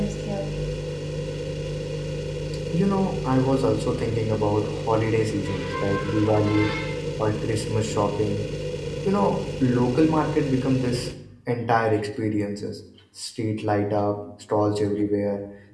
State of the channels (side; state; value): both; identical; correlation 1.00